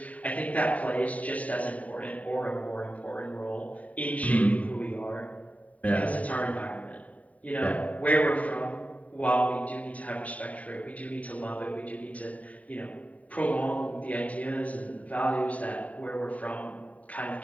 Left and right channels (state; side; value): late; right; 0.069 ms